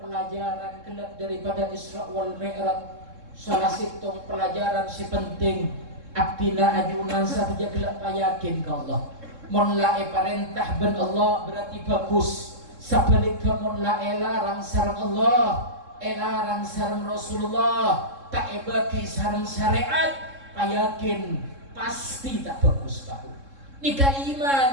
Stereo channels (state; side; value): late; left; 3.7 ms